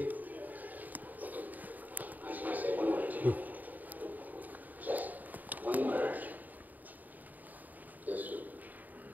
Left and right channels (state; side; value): late; left; 0.083 ms